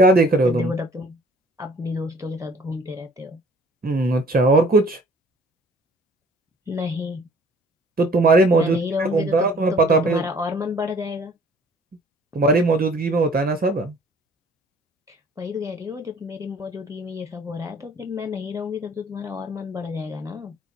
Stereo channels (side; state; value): both; normal; correlation 0.54